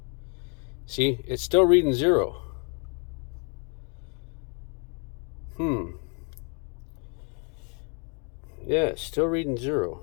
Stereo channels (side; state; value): right; quieter; 36.8 dB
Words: See, it's still reading 0. Yeah, it's still reading 0.